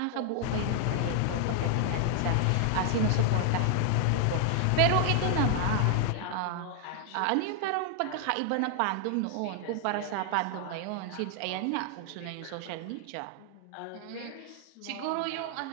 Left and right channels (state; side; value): different; both; correlation 0.00